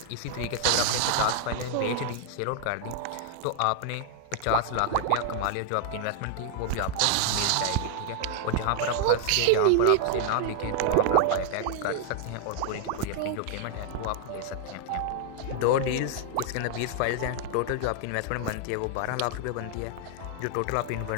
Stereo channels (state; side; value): different; both; correlation 0.00